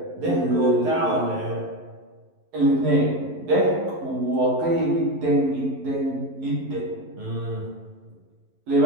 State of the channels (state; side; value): late; left; 11 ms